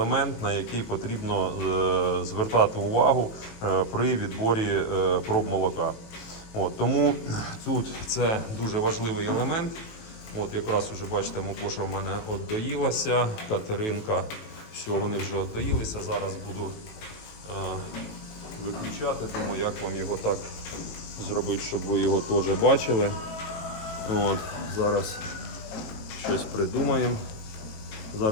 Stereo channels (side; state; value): right; late; 18 ms